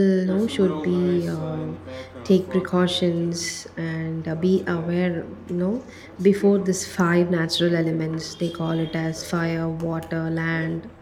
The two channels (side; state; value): both; identical; correlation 1.00